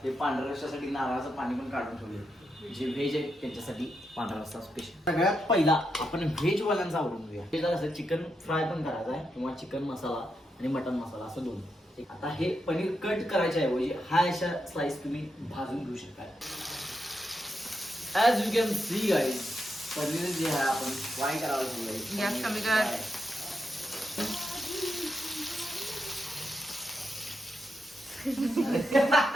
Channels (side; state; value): both; normal; correlation 0.84